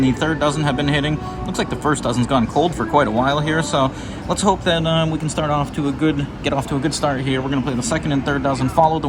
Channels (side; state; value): both; identical; correlation 1.00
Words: the third dozen have been hitting. Looks like the first dozen's gone cold for quite a while here, so let's hope that we can get off to a good start here. We're going to play the second and third dozen, follow the